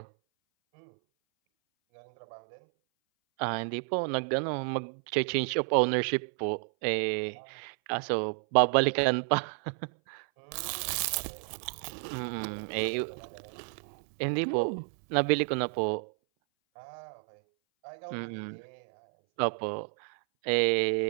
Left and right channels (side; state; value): left; silent; 57 dB below the other